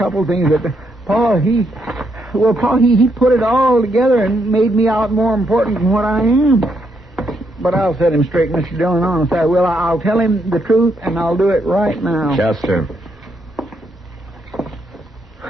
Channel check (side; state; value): both; normal; correlation 0.77